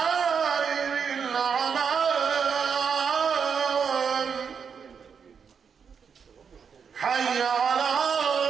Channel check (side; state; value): left; quieter; 6.6 dB